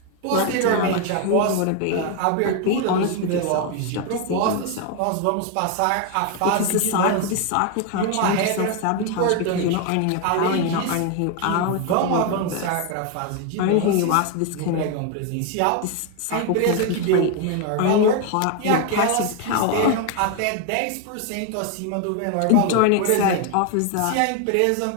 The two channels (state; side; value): different; both; correlation 0.01